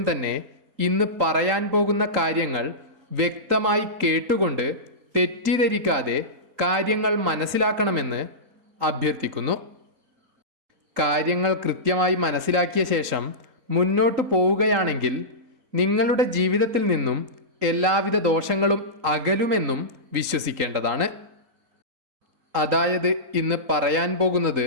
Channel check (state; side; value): late; left; 3.8 ms